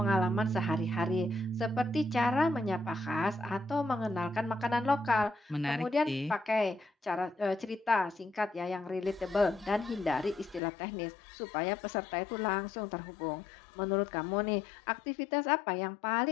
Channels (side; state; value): right; drops out; at 10.6 s